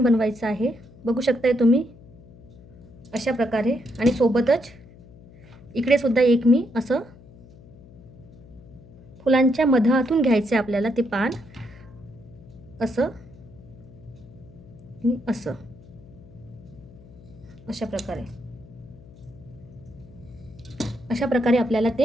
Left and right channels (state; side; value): noise; left; hum, 21 dB below the sound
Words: बनवायचं आहे. बघू शकताय तुम्ही अशा प्रकारे. आणि सोबतच इकडे सुद्धा एक मी असं फुलांच्या मधातून घ्यायचं आपल्याला ते पान, असं आणि असं, अशा प्रकारे. अशा प्रकारे आपल्याला